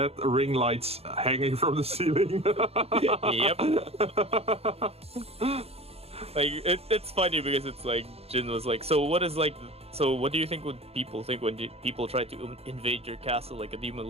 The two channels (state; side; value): late; left; 0.29 ms